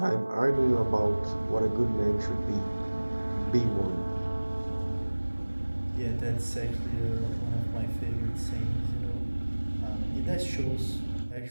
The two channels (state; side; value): inverted; both; correlation -1.00